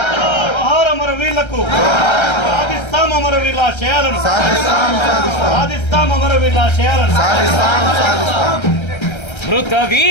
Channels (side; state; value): right; late; 1.3 ms